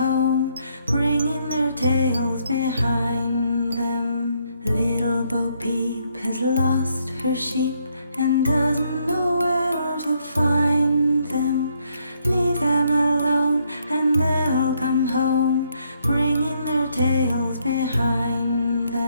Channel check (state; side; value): inverted; both; correlation -0.73